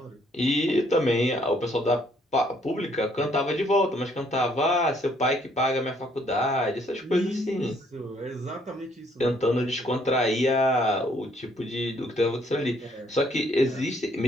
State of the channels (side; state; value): both; normal; correlation 0.66